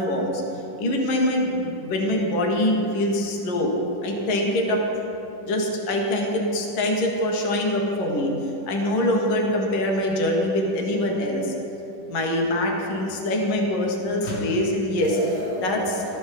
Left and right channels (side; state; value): right; late; 10 ms